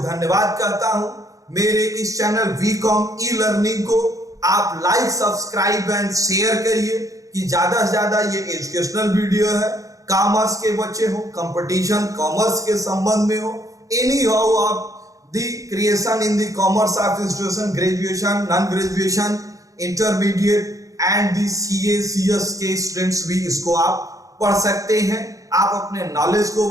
करता हूं. मेरे इस चैनल वीकॉम ई लर्निंग को आप लाइक, सब्सक्राइब एंड शेयर करिए कि ज्यादा से ज्यादा ये एजुकेशनल वीडियो है. कॉमर्स के बच्चे हो, कंपटीशन कॉमर्स के संबंध में हो, any how of the creation in the commerce of institution, graduation, non graduation, intermediate and the CA CS के स्टूडेंट्स भी इसको आप पढ़ सकते हैं. आप अपने नॉलेज को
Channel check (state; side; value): late; left; 0.16 ms